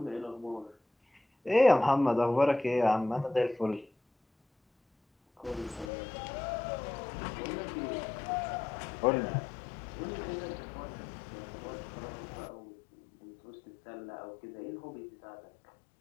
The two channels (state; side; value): drops out; right; at 5.9 s